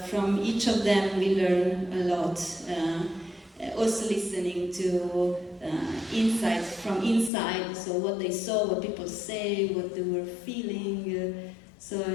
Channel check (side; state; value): right; drops out; at 7.3 s